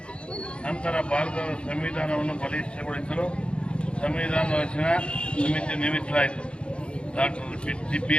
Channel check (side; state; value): right; late; 0.057 ms